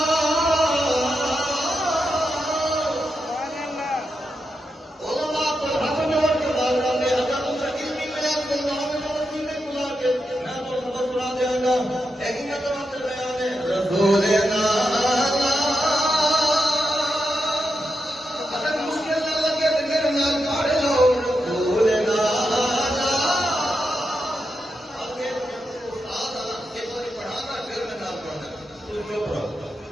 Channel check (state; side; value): normal; both; correlation 0.86